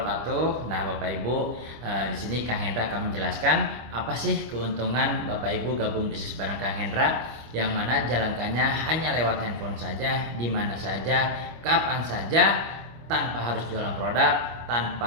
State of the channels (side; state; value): left; late; 25 ms